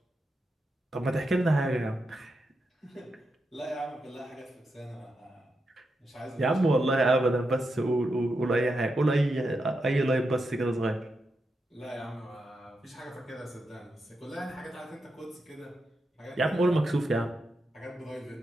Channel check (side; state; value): both; normal; correlation 0.86